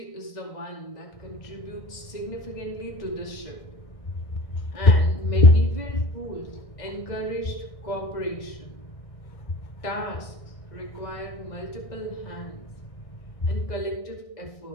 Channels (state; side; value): late; right; 1.6 ms